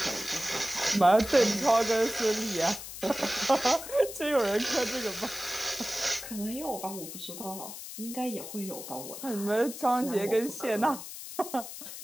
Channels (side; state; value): left; noise; hiss, 11 dB below the sound